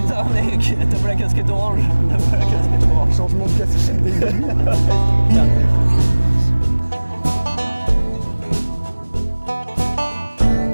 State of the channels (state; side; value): inverted; both; correlation -1.00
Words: mec, t'as pas la casquette orange. Changement de casquette des début.